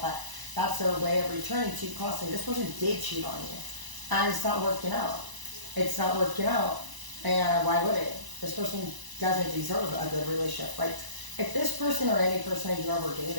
but that's their way of returning to you constantly. This person did cheat on you. And it's not working out. It's not working out. And why would it? This person doesn't deserve a good relationship. Like, if this person or any person you've ever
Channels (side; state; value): left; late; 1.0 ms